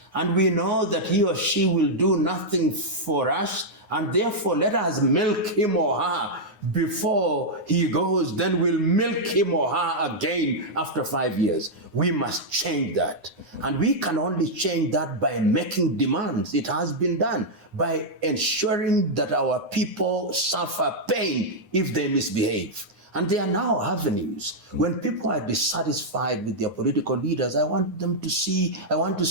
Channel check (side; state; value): left; late; 9.6 ms